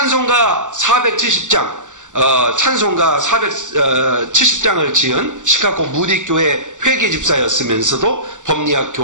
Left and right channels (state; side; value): late; left; 0.86 ms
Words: 470장 찬송가 470장을 지은 시카고 무디교회 회계집사였으면서도 법리학